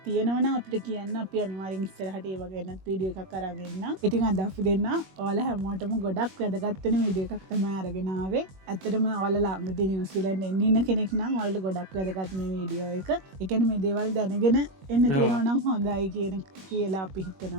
තියෙනවා නම් අපිට කියන්න. අපි අනිවාර්යෙන් ඉස්සරහට ඒ වගේ වෙනත් වීඩියෝ එකක් අරන් එන්න. ඉතින් අද අපි දෙන්න ඔයාලා හැමෝටම ගොඩක් වැදගත් වෙන වීඩියෝ එකක් තමයි අරගෙන ආවේ. ඇත්තටම ඔයාලා ළඟදී නිව්සීලන්ත එන්න ඉන්න කෙනෙක් නම් ඔයාලට ගොඩක් වැදගත් මේ වීඩියෝ එක. ඒ කියන්නේ මේ දේවල් දැනගෙන එන්න තියෙනවා නම් හොඳයි කියලා අපි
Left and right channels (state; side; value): late; left; 21 ms